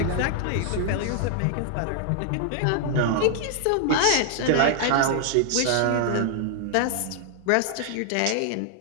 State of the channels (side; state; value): both; different; correlation 0.00